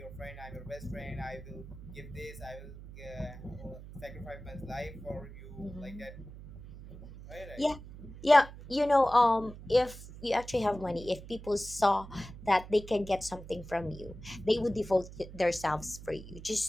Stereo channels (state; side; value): noise; right; hum, 14 dB below the sound